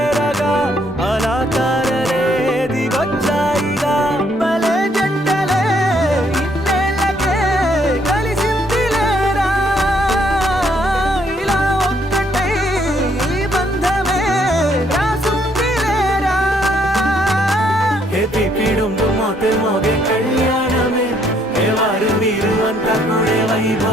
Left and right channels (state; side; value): normal; both; correlation 0.69